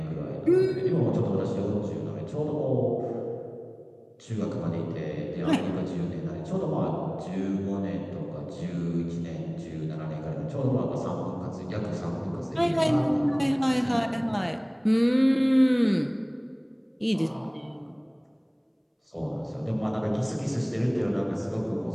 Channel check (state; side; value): identical; both; correlation 1.00